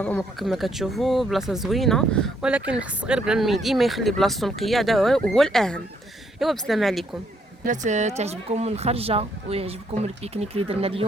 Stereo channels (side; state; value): both; normal; correlation 0.71